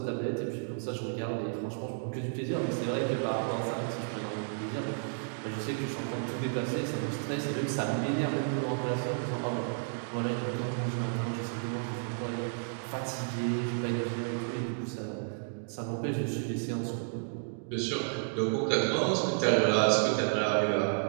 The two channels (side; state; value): left; silent; digital silence